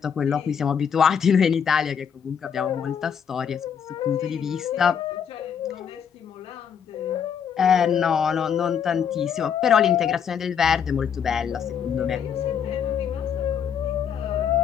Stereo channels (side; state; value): right; quieter; 7.6 dB